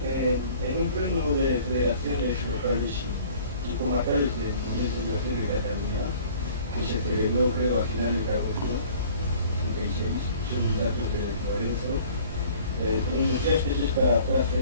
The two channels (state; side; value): inverted; both; correlation -0.50